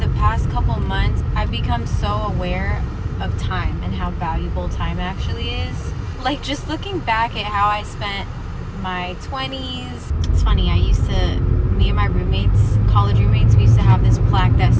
past couple months, I've become so aware of time and how valuable time actually is. Like, just looking back at how I spent my 20s. It's funny, me and my roommates, college roommates, we used to have this plaque that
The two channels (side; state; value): both; identical; correlation 1.00